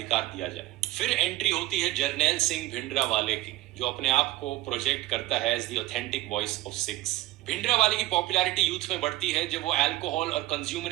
दिया जाए। फिर एंट्री होती है जर्नैल सिंह भिंडरावाले की, जो अपने आप को प्रोजेक्ट करता है as the authentic voice of Sikhs. Bhindranwale की पॉपुलैरिटी यूथ में बढ़ती है जब वो अल्कोहल और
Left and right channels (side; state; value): left; quieter; 17.2 dB